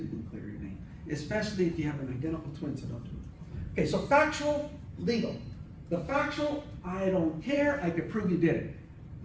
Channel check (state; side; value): identical; both; correlation 1.00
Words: can clear your name. Especially if you have an identical twin, so don't do it. Okay, so factual, legal. The factual, I don't care, I could prove you did it.